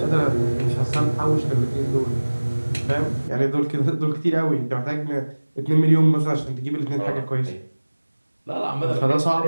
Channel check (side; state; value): both; inverted; correlation -1.00